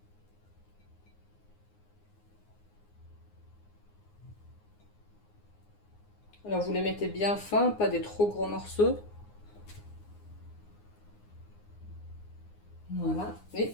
Alors vous les mettez bien fins, pas des trop gros morceaux. Voilà, et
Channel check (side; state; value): right; late; 9.7 ms